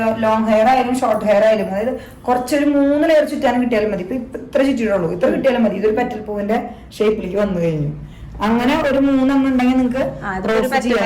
ലോങ് ഹെയർ ആയാലും ഷോർട്ട് ഹെയർ ആയാലും, അതായത് കുറച്ചൊരു 3 ലെയർ ചുറ്റാനും കിട്ടിയാലും മതി. ഇപ്പൊ ഇത്ര ചുറ്റിയിട്ടുള്ളൂ, ഇത്ര കിട്ടിയാലും മതി. ഇതൊരു പെറ്റൽ പൂവിന്റെ ഷേപ്പിലേക്ക് വന്നു കഴിഞ്ഞു. അങ്ങനെ ഒരു 3 എണ്ണം ഉണ്ടെങ്കിൽ നിങ്ങൾക്ക്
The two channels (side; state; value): both; identical; correlation 1.00